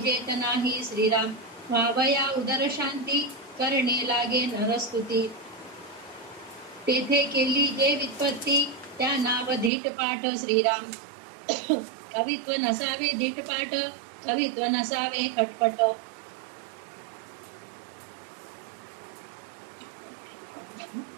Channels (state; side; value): drops out; left; at 9.7 s